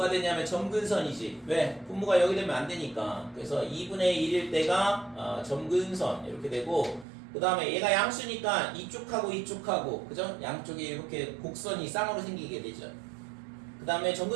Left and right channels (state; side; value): drops out; left; at 7.1 s